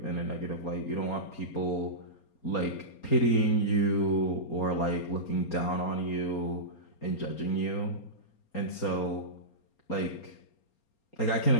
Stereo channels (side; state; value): right; late; 4.3 ms